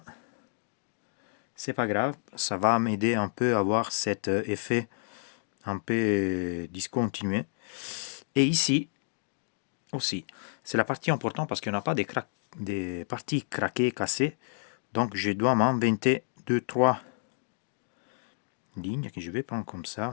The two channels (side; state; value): right; silent; digital silence